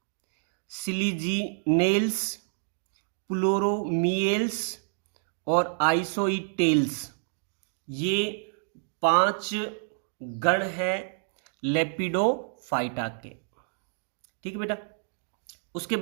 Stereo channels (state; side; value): silent; left; digital silence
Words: सिलिजिनेल्स, प्लूरोमियल्स और आइसोईटेल्स। ये पांच गण हैं लेपिडोफाइटा के। ठीक है बेटा। उसके